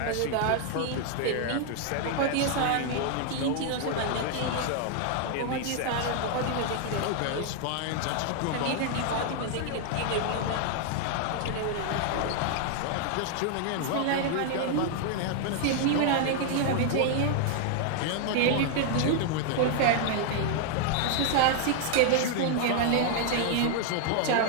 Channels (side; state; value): both; different; correlation 0.00